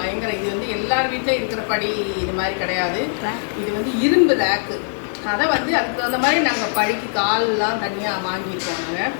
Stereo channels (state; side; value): silent; right; digital silence